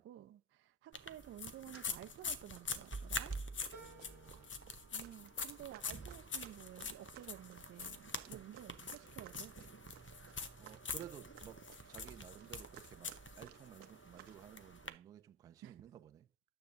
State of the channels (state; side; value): normal; both; correlation 0.15